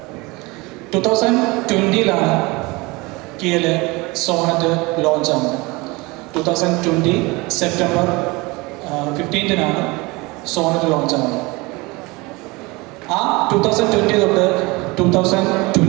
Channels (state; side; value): quieter; left; 24.2 dB